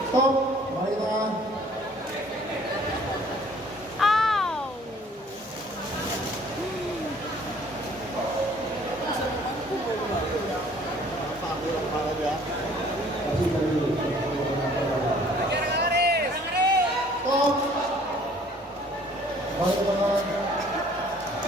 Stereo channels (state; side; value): normal; both; correlation 0.56